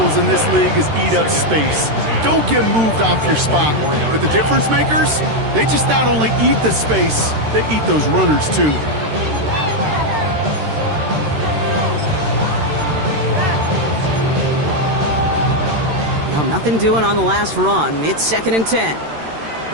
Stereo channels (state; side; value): late; left; 13 ms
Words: in this league is eat up space. Don't get moved off your spot. But the difference makers, they just not only eat the space, they eat those runners too. Well, nothing doing on the last run. It's second and 10.